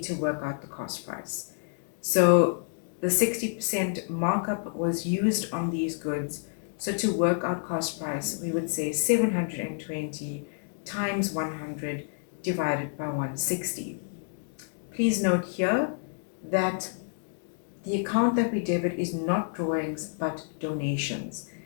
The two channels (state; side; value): silent; right; digital silence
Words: to work out the cost price. So the 60% markup was used on these goods. So to work out cost price, we would say 720 times 100 divided by 160. Please note here that the account that we debit is not drawings but donations.